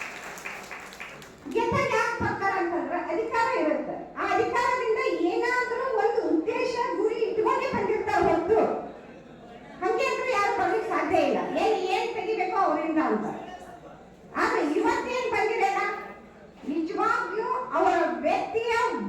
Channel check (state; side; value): identical; both; correlation 1.00